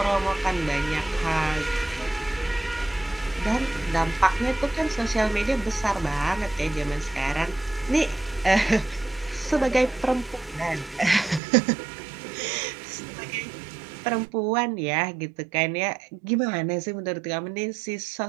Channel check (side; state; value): left; drops out; at 11.4 s